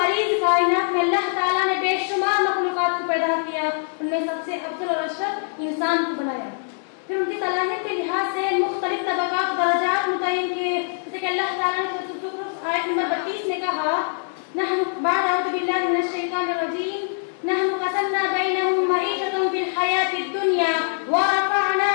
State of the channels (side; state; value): right; silent; 63 dB below the other